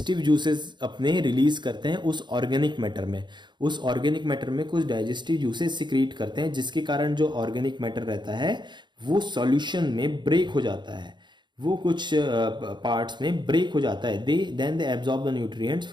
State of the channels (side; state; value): left; late; 0.22 ms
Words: जूसेस अपने रिलीज करते हैं उस ऑर्गेनिक मैटर में। उस ऑर्गेनिक मैटर में कुछ डाइजेस्टिव जूसेस सिक्रीट करते हैं जिसके कारण जो ऑर्गेनिक मैटर रहता है वो सॉल्यूशन में ब्रेक हो जाता है, वो कुछ पार्ट्स में ब्रेक हो जाता है। Then they absorb the nutrients